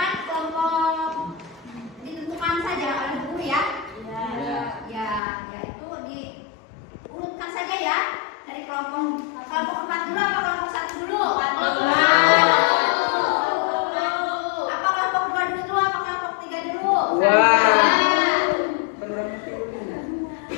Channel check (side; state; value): right; drops out; at 5.2 s